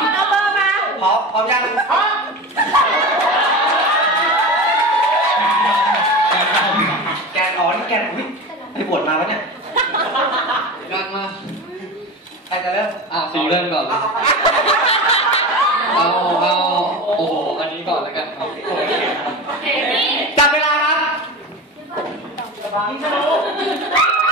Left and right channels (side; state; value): both; normal; correlation 0.28